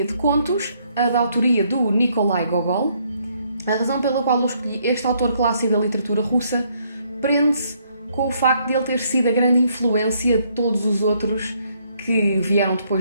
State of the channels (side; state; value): both; inverted; correlation -0.70